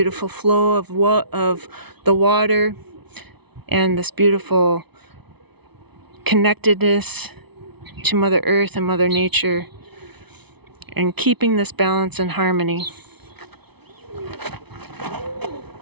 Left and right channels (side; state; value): left; late; 0.99 ms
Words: flow of the water and this beautiful connectedness to Mother Earth and Mother Nature, and keeping this balance and harmony.